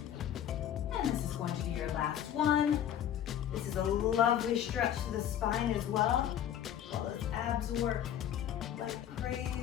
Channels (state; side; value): quieter; right; 10.3 dB